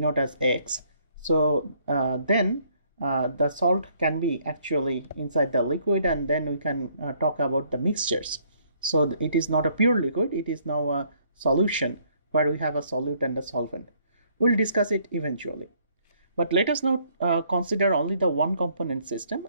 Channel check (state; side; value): inverted; both; correlation -0.66